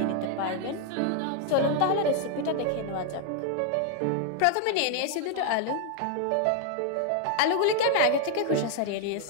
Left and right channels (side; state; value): both; different; correlation 0.00